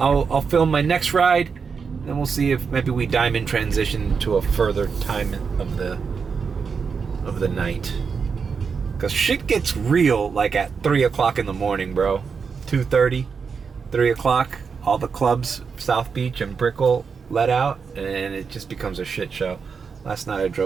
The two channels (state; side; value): quieter; left; 5.7 dB